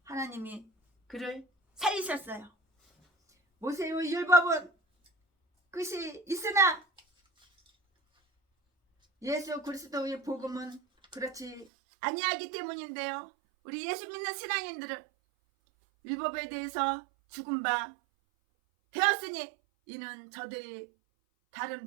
하나님이 그를 살리셨어요. 모세의 율법은 끝이 있으나 예수 그리스도의 복음은 그렇지 아니하기 때문인데요. 우리 예수 믿는 신앙인들은 율법에 대해서 죽은 바 되었으니 이는 저들이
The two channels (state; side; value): drops out; left; at 11.7 s